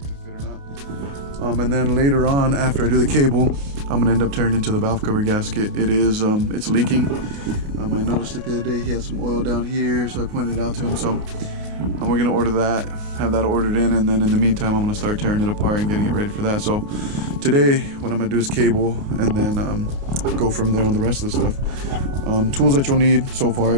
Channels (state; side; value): late; left; 29 ms